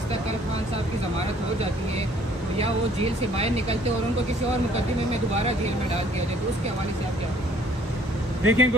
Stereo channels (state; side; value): normal; both; correlation 0.59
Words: कल खान साहब की ज़मानत हो जाती है या वो जेल से बाहर निकलते और उनको किसी और मुकदमे में दोबारा जेल में डाल दिया जाए, तो उसके हवाले से आप क्या देखें?